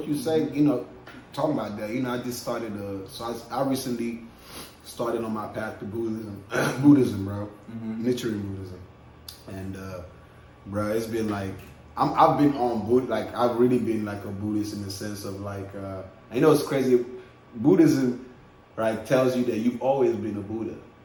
you say, you know, talking about that. You know, I just started. I recently started on my path to Buddhism, bro. Nichiren Buddhism, and bro, it's been like I've been on Buddha. Like I've really been like a Buddhist in the sense of like, I know it's crazy. Buddhism, right, tells you that you've always been a Buddha.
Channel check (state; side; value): identical; both; correlation 1.00